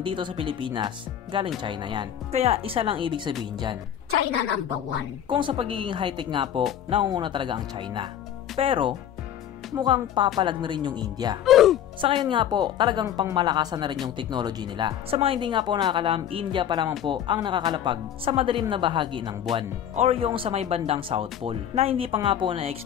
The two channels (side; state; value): right; quieter; 10.1 dB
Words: sa Pilipinas, galing China yan. Kaya isa lang ibig sabihin dyan, China number 1. Kung sa pagiging high-tech nga po, nangunguna talaga ang China. Pero mukhang papalag na rin yung India. Sa ngayon nga po, talagang pangmalakasan na rin yung technology nila. Sa mga hindi nga po nakakalam, India pa lamang po ang nakakalapag sa madilim na bahagi ng buwan or yung sa may bandang South Pole na hindi pa nga po